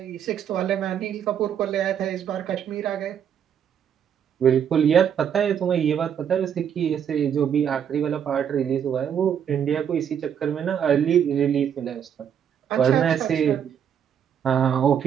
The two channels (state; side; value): quieter; left; 8.6 dB